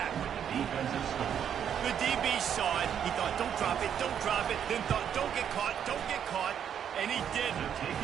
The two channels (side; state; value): left; quieter; 8.7 dB